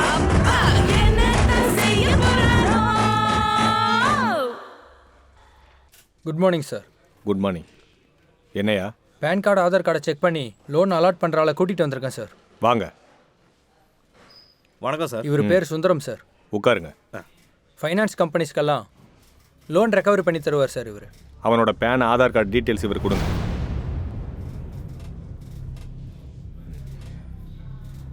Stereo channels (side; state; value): both; identical; correlation 1.00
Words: good morning sir. Good morning. என்னையா? பேன் கார்டு ஆதார் கார்டை செக் பண்ணி லோன் அலாட் பண்ணுற ஆளை கூட்டிகிட்டு வந்திருக்கேன் சார். வாங்க. வணக்கம் சார். இவர் பேர் சுந்தரம் சார். உட்காருங்க. ஃபைனான்ஸ் கம்பெனிஸ்க்கெல்லாம் லோன் ரெக்கவரி பண்ணி தருவார் சார் இவர். அவனோட பேன் ஆதார் கார்டு டீட்டெயில்ஸ் இவர் கொடுங்க.